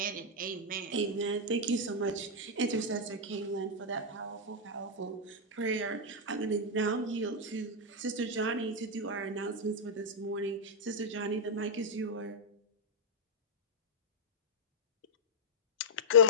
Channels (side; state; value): both; normal; correlation -0.05